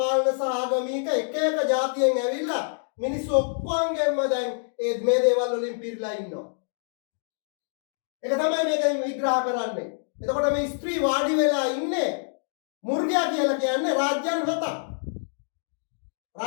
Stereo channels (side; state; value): right; silent; digital silence